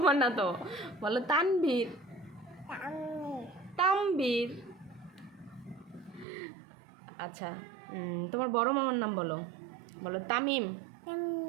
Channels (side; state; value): left; drops out; at 6.2 s